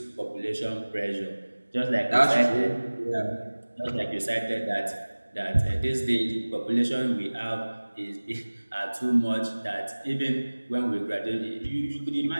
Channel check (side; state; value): both; inverted; correlation -1.00